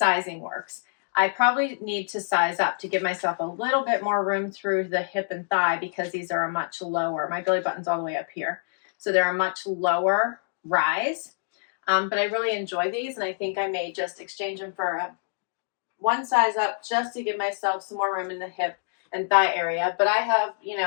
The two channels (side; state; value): right; silent; digital silence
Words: works. I probably need to size up to give myself a little bit more room through the hip and thigh because these are a much lower. My belly button's all the way up here. So they're a much lower rise. But I really enjoy these, and I think I may just exchange them for one size up just to give myself some more room in the hip and thigh area. But I have, you